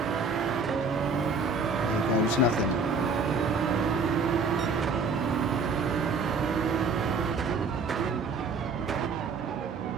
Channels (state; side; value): quieter; left; 4.2 dB